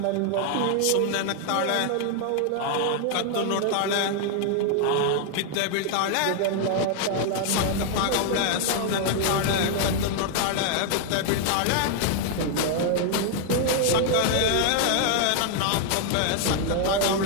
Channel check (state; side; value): different; both; correlation 0.00